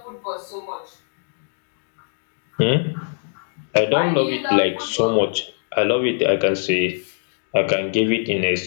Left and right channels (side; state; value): right; silent; digital silence